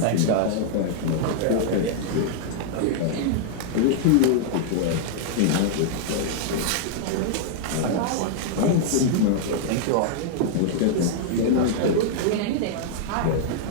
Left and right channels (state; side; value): different; both; correlation -0.01